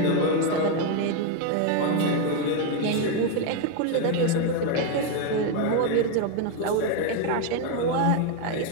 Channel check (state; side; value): different; both; correlation 0.01